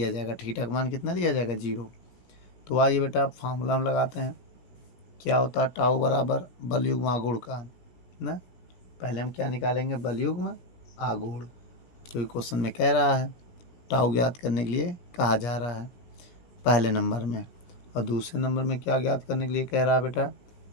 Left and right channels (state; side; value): late; right; 17 ms